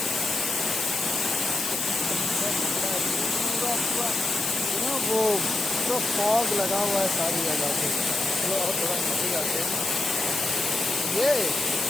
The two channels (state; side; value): noise; left; hiss, 2 dB below the sound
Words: वो पूरा फॉग लगा हुआ है सारी जगह पे। चलो और थोड़ा नीचे जाते हैं। ये